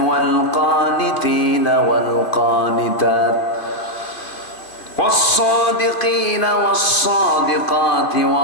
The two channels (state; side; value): late; right; 2.3 ms